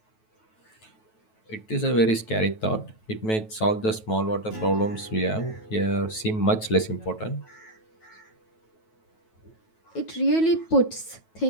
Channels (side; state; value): right; late; 9.2 ms